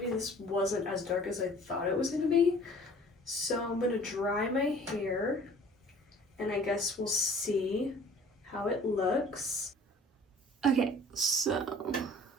this wasn't as dark as I thought it was gonna be. So I'm gonna dry my hair and I guess we'll see how it looks. Okay, so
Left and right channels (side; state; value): both; normal; correlation 0.50